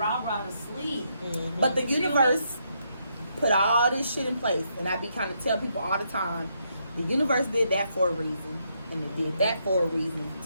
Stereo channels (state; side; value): inverted; both; correlation -0.77